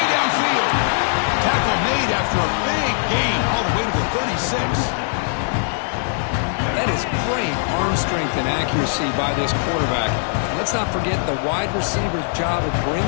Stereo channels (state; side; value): silent; right; digital silence